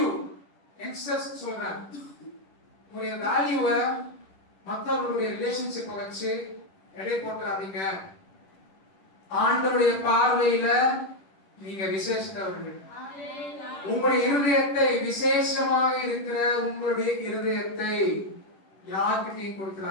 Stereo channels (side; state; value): right; late; 10 ms